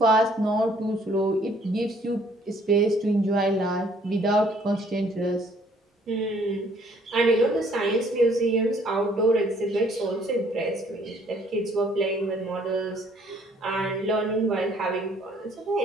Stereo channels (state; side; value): normal; both; correlation 0.61